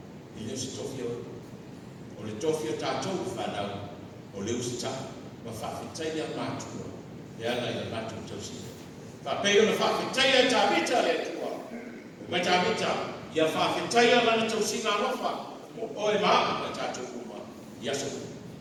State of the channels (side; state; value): both; identical; correlation 1.00